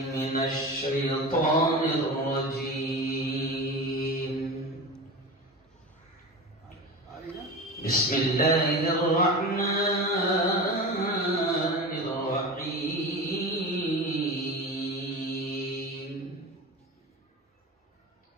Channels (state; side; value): normal; both; correlation 0.28